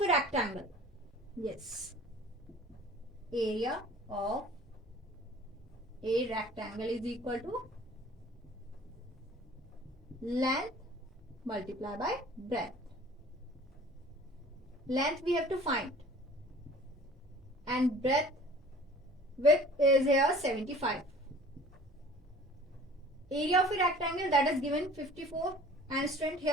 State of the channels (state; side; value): normal; both; correlation 0.48